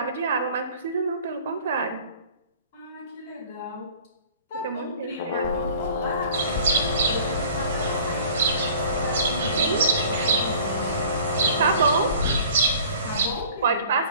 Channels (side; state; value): both; inverted; correlation -0.48